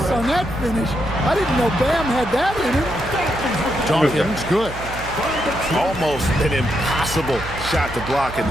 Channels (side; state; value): right; noise; hum, 12 dB below the sound